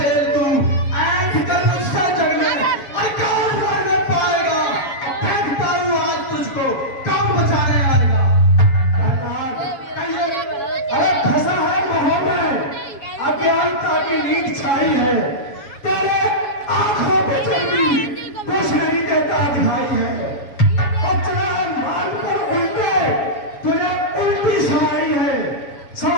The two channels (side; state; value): right; late; 7.1 ms